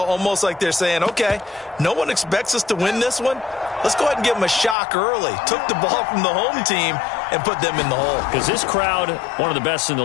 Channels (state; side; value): drops out; right; at 4.8 s